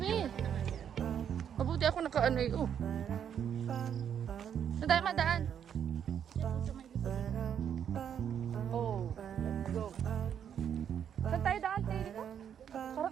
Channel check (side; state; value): left; quieter; 8.6 dB